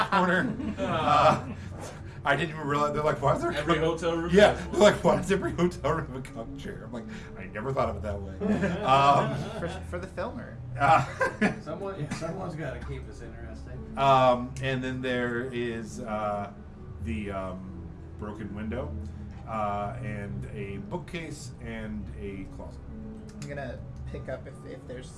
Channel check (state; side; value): identical; both; correlation 1.00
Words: corner. I didn't even realize. They're like, why is there Every cuck-" hotel room. Yeah, has they're one. like, why does every hotel room have a cuck chair? I'm like, I never thought of it that way. For the filmer. Someone's got to keep this interesting. And then there is the broken window, and a bookcase and a closet. I'm gonna pick up if there's